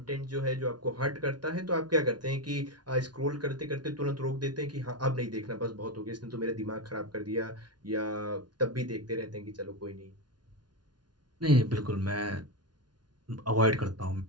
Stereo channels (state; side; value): late; left; 0.70 ms